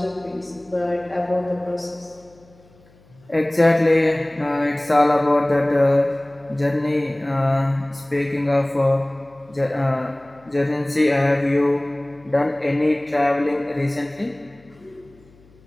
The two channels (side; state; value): left; noise; hum, 28 dB below the sound